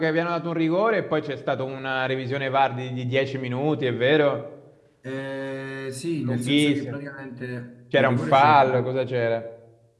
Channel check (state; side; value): identical; both; correlation 1.00